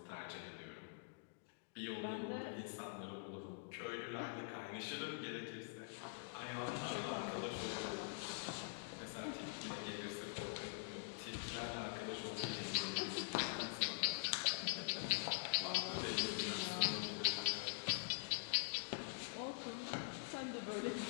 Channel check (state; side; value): silent; right; digital silence